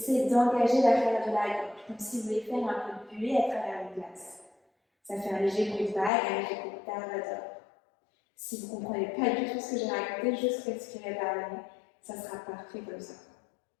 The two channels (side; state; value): right; drops out; at 6.1 s